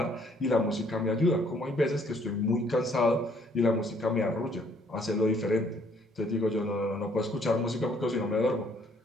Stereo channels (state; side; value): normal; both; correlation 0.64